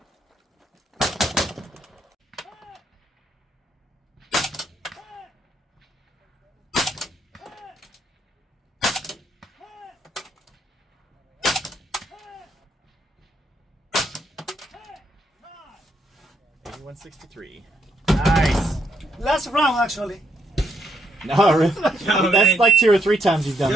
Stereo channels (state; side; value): normal; both; correlation 0.77